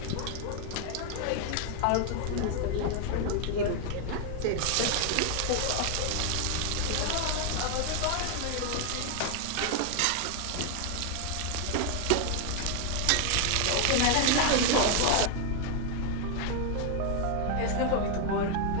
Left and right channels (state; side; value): different; both; correlation 0.00